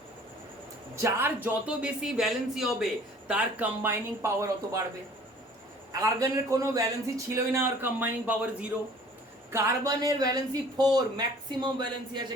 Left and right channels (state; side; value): normal; both; correlation 0.51